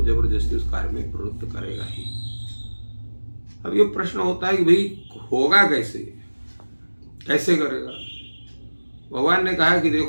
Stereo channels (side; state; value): both; inverted; correlation -1.00